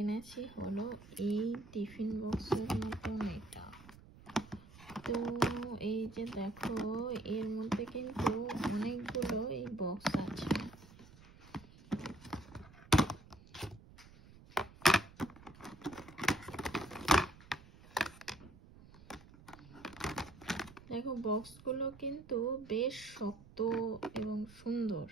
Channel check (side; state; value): right; noise; rumble, 21 dB below the sound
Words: হলো এই টিফিন বক্সের মতন এটা। তো এই যে দেখো এর মধ্যে কিন্তু অনেকগুলো এই বক্স আছে। দেখো বক্সগুলো কিন্তু বেশ শক্ত এবং সুন্দর।